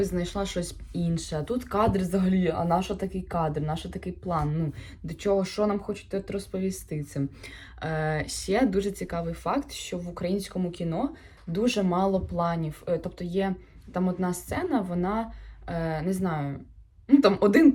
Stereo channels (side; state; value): both; identical; correlation 1.00